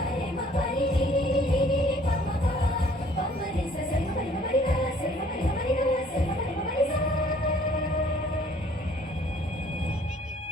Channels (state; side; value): normal; both; correlation 0.58